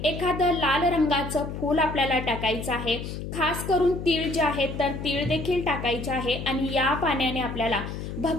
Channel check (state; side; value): noise; left; hum, 7 dB below the sound